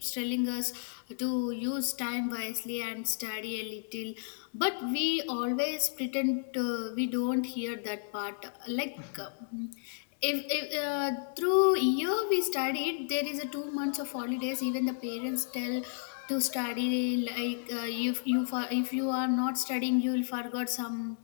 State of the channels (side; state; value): right; silent; digital silence